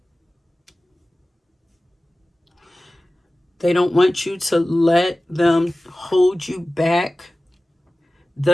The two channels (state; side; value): normal; both; correlation 0.97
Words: They don't want you to let them hold you back.